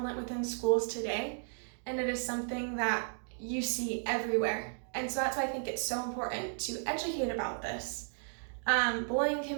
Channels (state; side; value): silent; left; 55 dB below the other